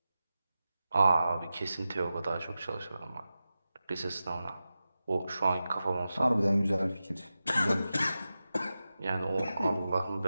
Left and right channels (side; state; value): both; inverted; correlation -0.93